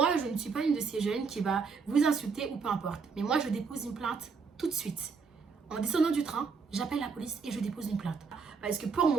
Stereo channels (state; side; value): quieter; left; 5.3 dB